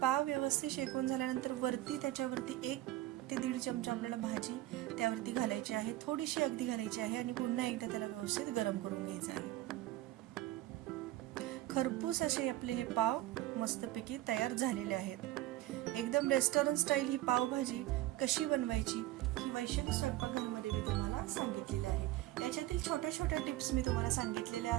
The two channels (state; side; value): quieter; left; 15.8 dB